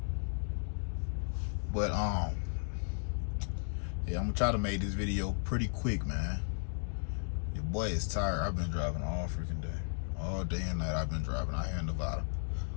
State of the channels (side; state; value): right; silent; digital silence